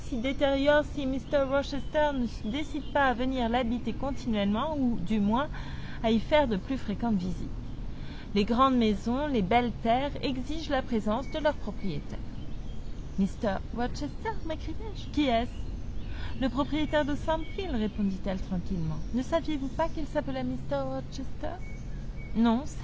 détériore si Mr. Rochester ne se décide pas à venir l'habiter continuellement, ou du moins à y faire de plus fréquentes visites. Les grandes maisons, les belles terres exigent la présence de leurs propriétaires. »« Mr. Rochester » m'écriai-je. « Qui est-ce ?»« Le propriétaire de Thornfield, » répondit-elle tranquillement. « Ne saviez-vous pas qu'il s'appelait Mr. Rochester ?»« Non,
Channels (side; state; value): both; identical; correlation 1.00